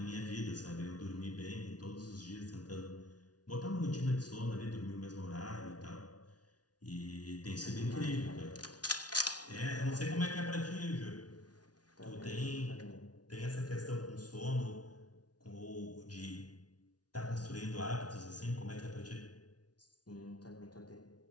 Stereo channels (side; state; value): right; late; 0.69 ms